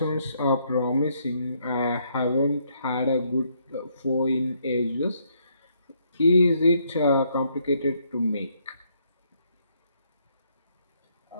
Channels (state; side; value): inverted; both; correlation -0.72